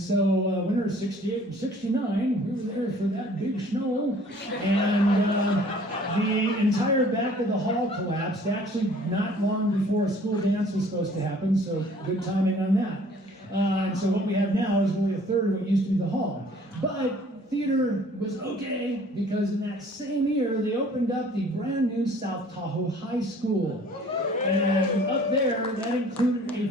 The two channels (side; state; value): both; normal; correlation 0.53